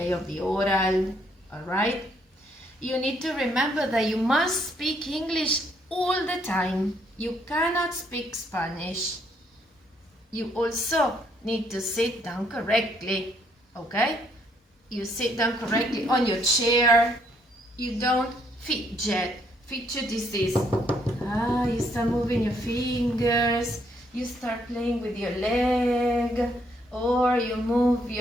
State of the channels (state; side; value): normal; both; correlation 0.70